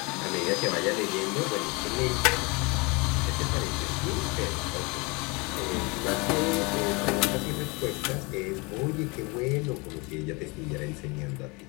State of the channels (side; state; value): right; quieter; 28.0 dB